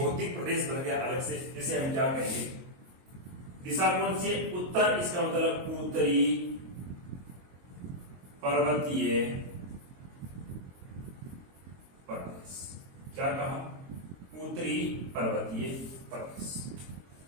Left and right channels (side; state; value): left; late; 22 ms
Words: प्रदेश बन गया अलग से, जिसे हम क्या कहेंगे, दिशा कौन सी है उत्तर, इसका मतलब उत्तरी पर्वतीय प्रदेश। क्या कहा, उत्तरी पर्वतीय प्रदेश